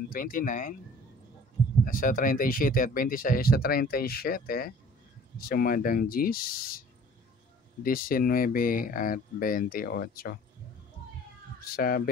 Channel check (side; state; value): both; normal; correlation 0.51